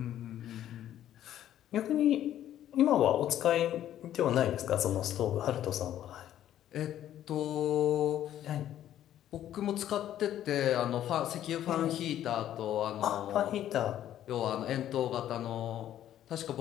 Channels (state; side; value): quieter; right; 11.7 dB